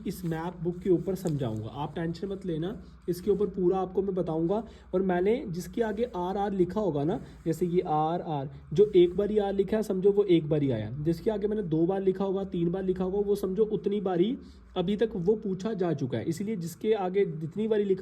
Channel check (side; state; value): both; identical; correlation 1.00